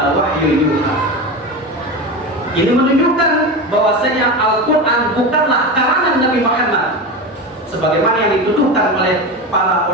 wahyu yuha. Ini menunjukkan bahwasanya Al-Quran bukanlah karangan Nabi Muhammad sebagaimana yang dituduhkan oleh para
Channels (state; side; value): normal; both; correlation 0.23